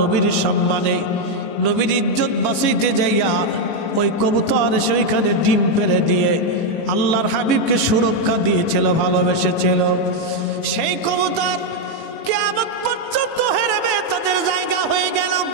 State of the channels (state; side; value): late; right; 18 ms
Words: সম্মানে, নবীর ইজ্জত বাঁচাইতে যাইয়া ওই কবুতর এসে ওইখানে ডিম পেড়ে দিয়ে আল্লাহর হাবিবকে সুরক্ষা দিয়েছিল, ভালোবেসেছিল। সেই কবুতর কিয়ামত পর্যন্ত হেরেমে তাদের জায়গা হয়ে গেল।